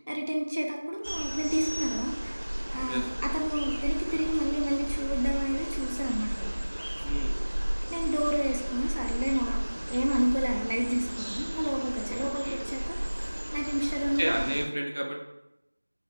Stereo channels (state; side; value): inverted; both; correlation -1.00